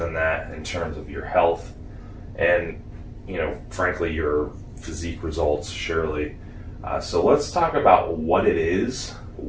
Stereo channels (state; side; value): identical; both; correlation 1.00